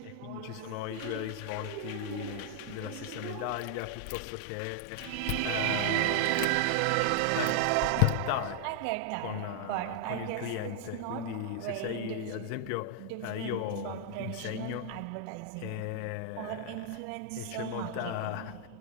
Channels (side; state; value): both; different; correlation 0.00